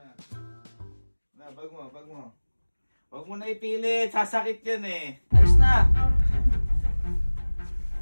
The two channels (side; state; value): both; inverted; correlation -1.00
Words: Na, bag mo. Huwag mo na ipilit, sasakit yan eh. Alis na!